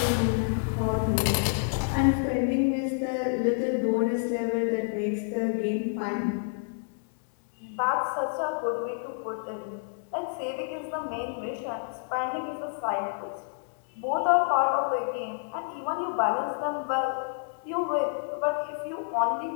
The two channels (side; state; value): right; silent; digital silence